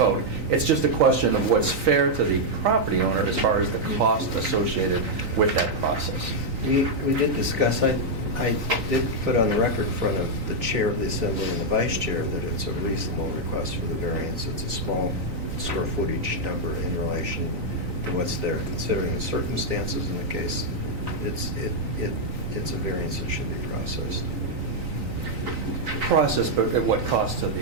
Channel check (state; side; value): late; left; 3.9 ms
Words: It's just a question of what's fair to the property owner as far as the cost associated with that process. We did discuss, I did put on the record in front of the chair of the assembly and the vice chair that it's a reasonable request for the variance. It's a small square footage number in relation to what's there, considering the circumstances in the case. It's a variance that should be processed. Process, but at what cost to